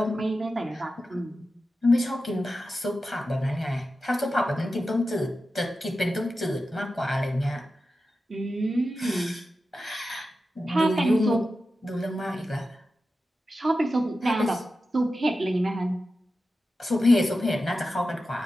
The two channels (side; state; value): both; normal; correlation 0.92